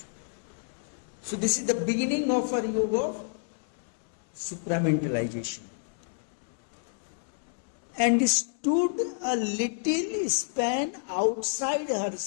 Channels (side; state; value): right; silent; digital silence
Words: So this is the beginning of our yoga of supramentalization. And stood a little span outside